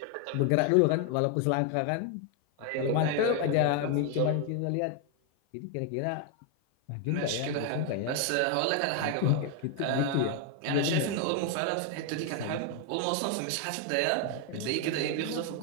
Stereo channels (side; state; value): both; different; correlation 0.01